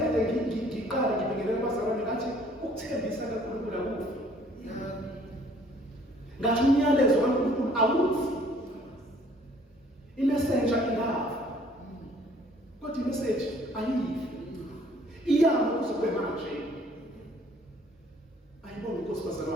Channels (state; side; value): normal; both; correlation 0.58